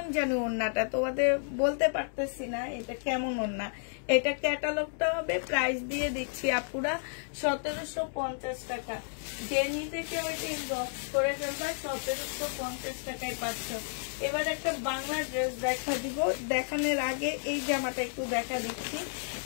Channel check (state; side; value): silent; right; digital silence